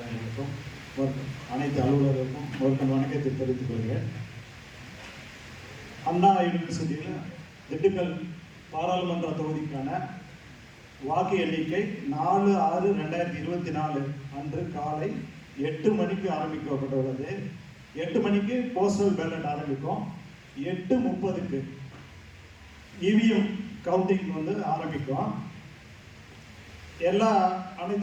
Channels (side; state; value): both; identical; correlation 1.00